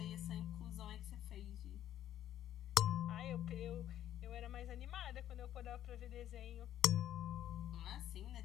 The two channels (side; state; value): right; quieter; 11.6 dB